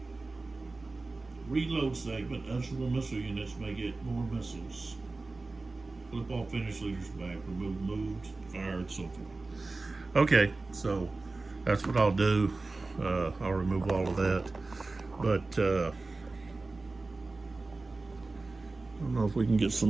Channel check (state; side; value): quieter; left; 3.4 dB